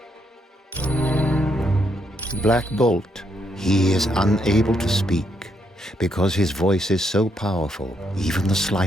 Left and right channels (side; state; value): both; normal; correlation 0.76